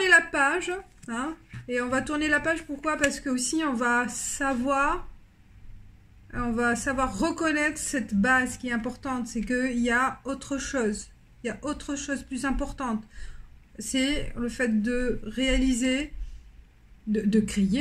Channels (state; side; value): identical; both; correlation 1.00